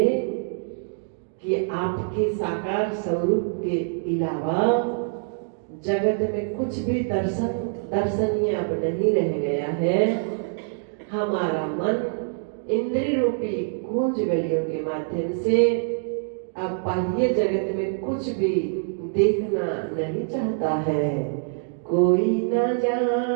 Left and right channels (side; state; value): left; silent; digital silence